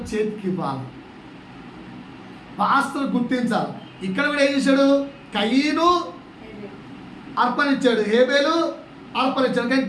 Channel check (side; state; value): both; identical; correlation 1.00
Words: చేతికి ఇవ్వాలి, పాస్టర్ గుర్తించాలి. ఇక్కడ కూడా ఏం చేశాడు? కయీను అర్పణించాడు, హేబేలు అర్పణించాడు. కానీ